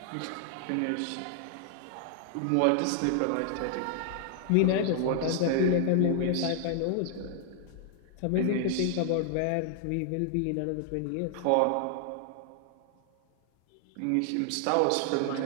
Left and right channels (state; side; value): different; both; correlation 0.00